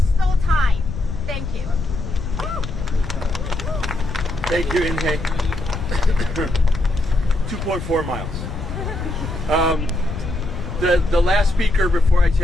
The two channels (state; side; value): noise; left; rumble, 7 dB below the sound